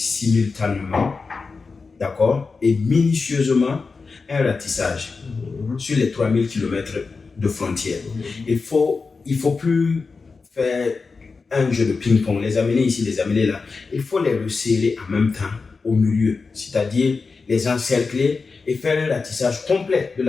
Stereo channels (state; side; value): quieter; right; 4.5 dB